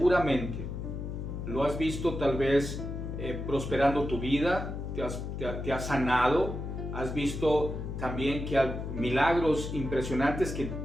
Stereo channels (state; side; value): noise; left; hum, 5 dB below the sound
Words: Lo has visto tal vez prosperando tu vida, te has sanado, has visto también que hay milagros impresionantes que